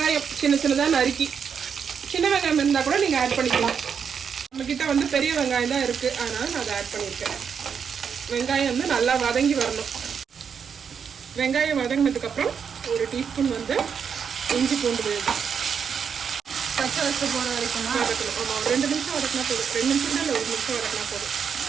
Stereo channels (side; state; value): left; quieter; 6.9 dB